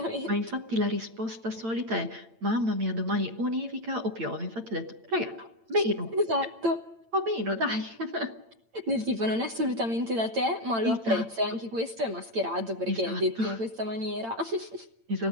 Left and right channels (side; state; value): left; late; 8.8 ms